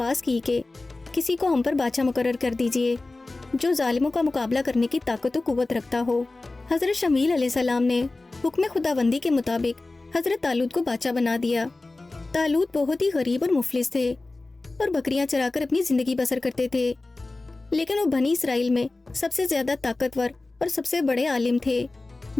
کی کہ کسی کو ہم پر بادشاہ مقرر کر دیجئے جو ظالموں کا مقابلہ کرنے کی طاقت و قوت رکھتا ہو۔ حضرت شمویل علیہ السلام نے حکم خداوندی کے مطابق حضرت طالوت کو بادشاہ بنا دیا۔ طالوت بہت ہی غریب اور مفلس تھے اور بکریاں چرا کر اپنی زندگی بسر کرتے تھے، لیکن وہ بنی اسرائیل میں سب سے زیادہ طاقتور اور سب سے بڑے عالم تھے۔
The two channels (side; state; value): right; quieter; 3.2 dB